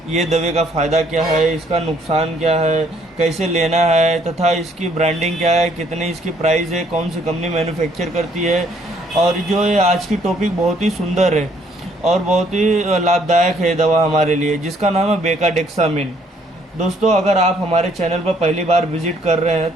ये दवा का फ़ायदा क्या है, इसका नुकसान क्या है, कैसे लेना है तथा इसकी ब्रांडिंग क्या है, कितनी इसकी प्राइस है, कौन सी कंपनी मैन्युफैक्चर करती है। और जो ये आज की टॉपिक बहुत ही सुंदर है और बहुत ही लाभदायक है दवा हमारे लिए, जिसका नाम है बेकाडेक्सामिन। दोस्तों, अगर आप हमारे चैनल पर पहली बार विजिट कर रहे हैं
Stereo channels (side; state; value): both; normal; correlation 0.65